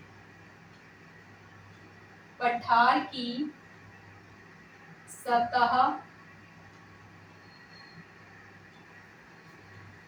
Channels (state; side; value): identical; both; correlation 1.00